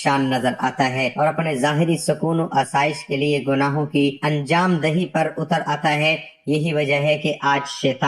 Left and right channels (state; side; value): identical; both; correlation 1.00